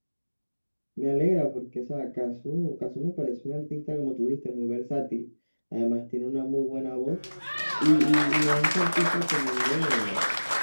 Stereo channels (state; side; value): inverted; both; correlation -1.00